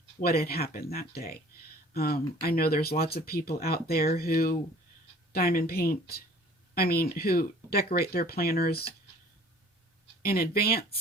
what had happened that day. I know there's lots of people out there who who decorate their planners in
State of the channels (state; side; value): normal; both; correlation 0.51